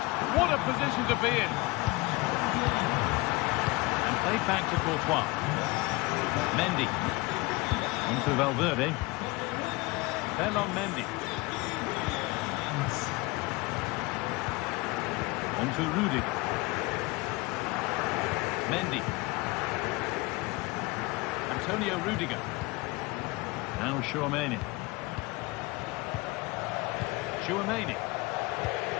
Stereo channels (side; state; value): right; quieter; 23.1 dB